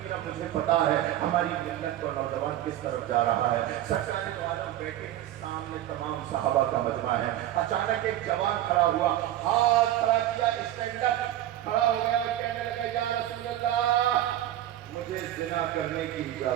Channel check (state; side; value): quieter; left; 13.2 dB